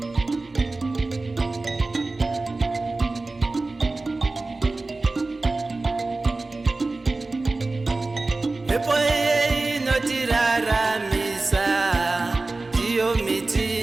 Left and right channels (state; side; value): quieter; left; 3.3 dB